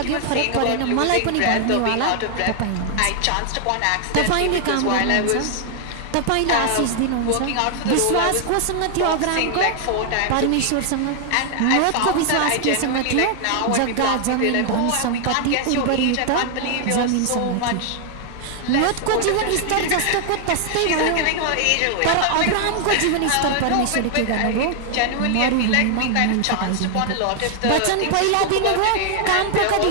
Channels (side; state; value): both; different; correlation 0.00